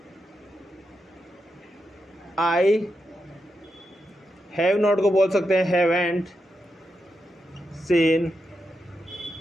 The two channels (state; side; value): normal; both; correlation 0.86